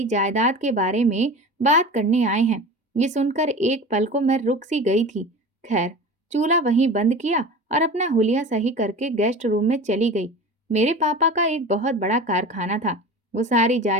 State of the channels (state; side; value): normal; both; correlation 0.34